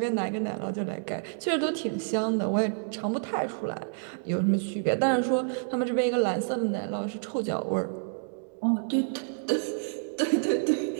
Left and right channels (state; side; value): silent; left; digital silence